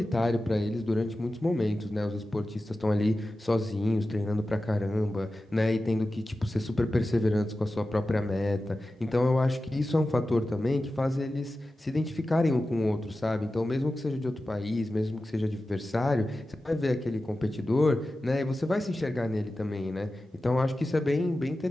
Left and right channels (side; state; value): both; normal; correlation 0.94